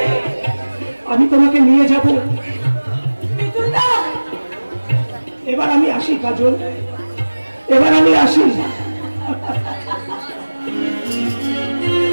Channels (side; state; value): both; inverted; correlation -1.00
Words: আমি তোমাকে নিয়ে যাব। এবার আমি আসি কাজল, এবার আমি আসি।